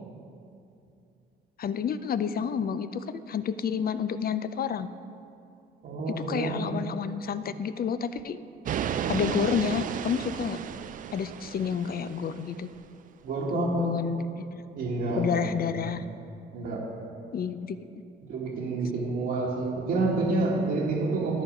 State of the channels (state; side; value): normal; both; correlation 0.43